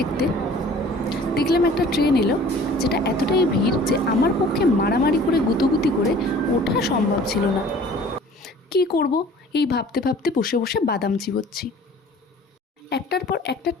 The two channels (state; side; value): normal; both; correlation 0.49